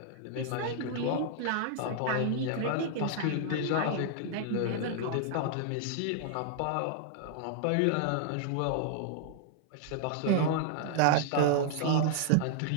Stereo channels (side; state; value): both; different; correlation -0.01